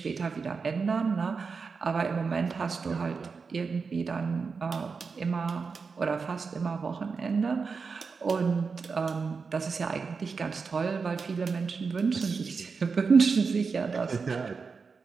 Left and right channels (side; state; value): left; quieter; 5.0 dB